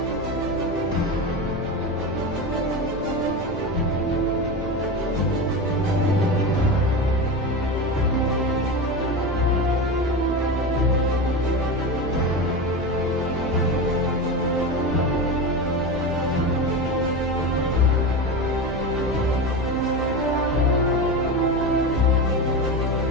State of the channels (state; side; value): noise; right; hum, 12 dB below the sound